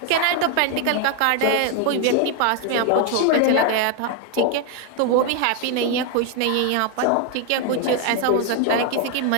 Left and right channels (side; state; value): both; different; correlation 0.01